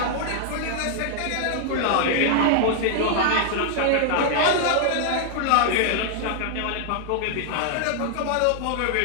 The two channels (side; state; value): both; different; correlation -0.01